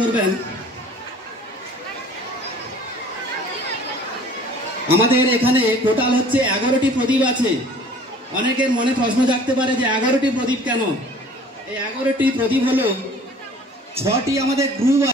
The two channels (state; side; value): normal; both; correlation 0.50